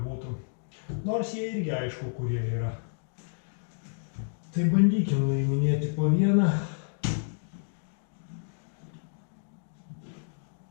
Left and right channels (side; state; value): right; silent; digital silence